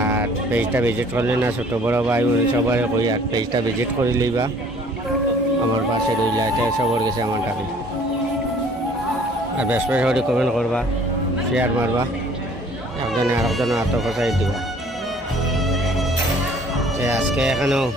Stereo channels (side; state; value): both; normal; correlation 0.55